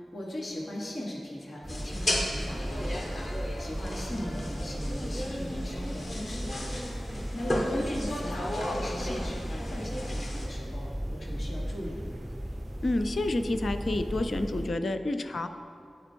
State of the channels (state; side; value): normal; both; correlation 0.95